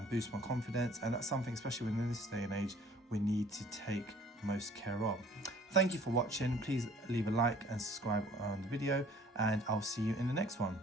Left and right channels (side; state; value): both; normal; correlation 0.54